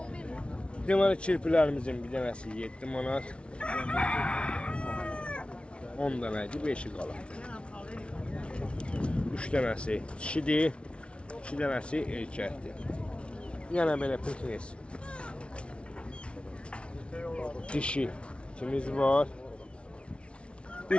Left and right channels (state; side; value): late; right; 0.059 ms